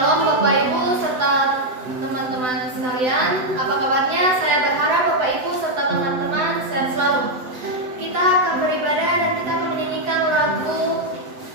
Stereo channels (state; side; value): late; left; 7.9 ms